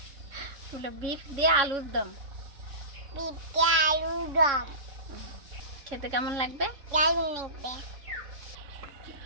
বিফ দিয়ে আলুর দম। খেতে কেমন লাগবে?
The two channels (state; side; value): late; left; 3.6 ms